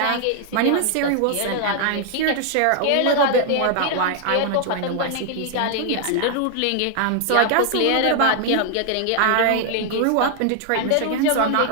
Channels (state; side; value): different; both; correlation 0.00